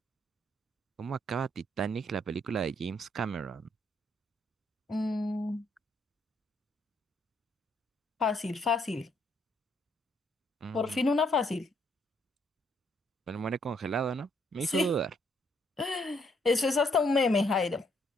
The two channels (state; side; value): normal; both; correlation 0.70